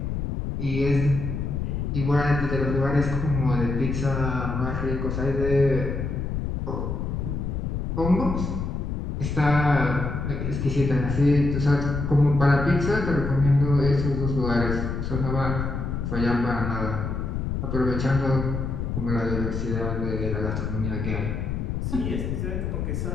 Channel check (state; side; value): noise; left; rumble, 2 dB below the sound